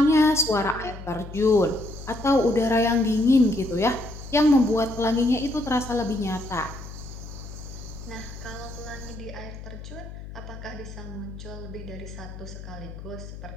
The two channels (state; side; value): noise; left; hum, 12 dB below the sound